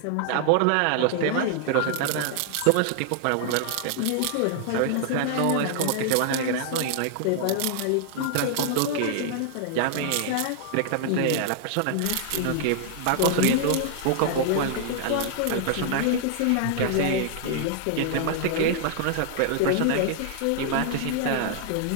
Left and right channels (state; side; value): different; both; correlation 0.00